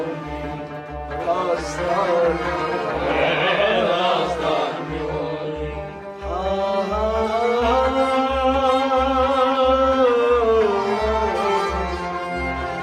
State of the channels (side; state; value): both; identical; correlation 1.00